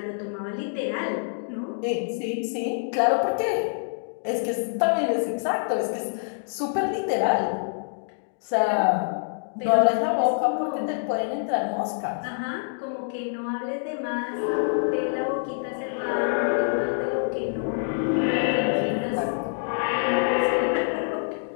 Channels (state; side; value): silent; right; digital silence